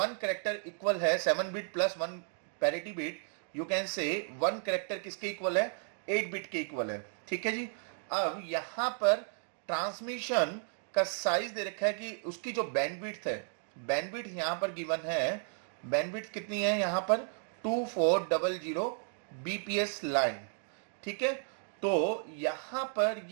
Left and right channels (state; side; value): silent; left; 55 dB below the other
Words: कैरेक्टर इक्वल है 7 bit plus 1 parity bit. You can से 1 कैरेक्टर किसके इक्वल है, 8 बिट के इक्वल है। ठीक है जी। अब यहां पर ट्रांसमिशन का साइज दे रखा है कि उसकी जो बैंडविड्थ है, बैंडविड्थ यहां पर गिवन है, बैंडविड्थ कितनी है यहां पर 2400 बीपीएस लाइन। ठीक है। तो यहां पर